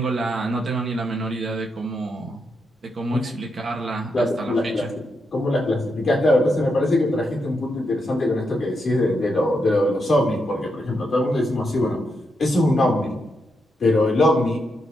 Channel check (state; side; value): normal; both; correlation 0.82